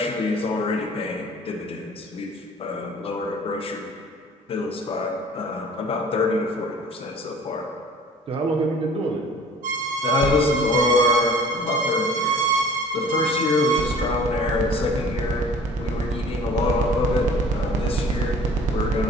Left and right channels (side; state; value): both; normal; correlation 0.49